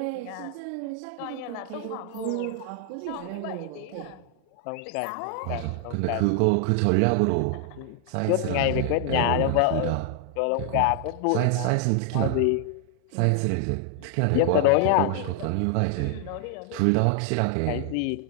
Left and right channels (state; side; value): different; both; correlation 0.00